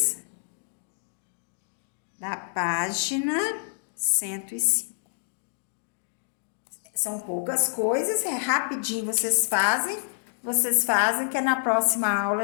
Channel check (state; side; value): silent; right; digital silence